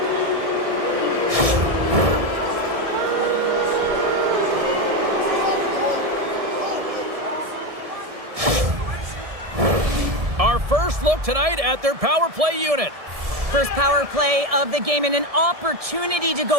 Our first look tonight at their power play unit. First power play of the game and an opportunity to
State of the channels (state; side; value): late; left; 1.7 ms